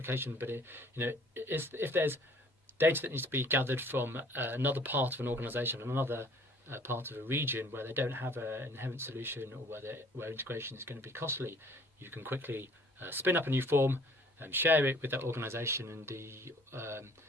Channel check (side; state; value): both; normal; correlation 0.55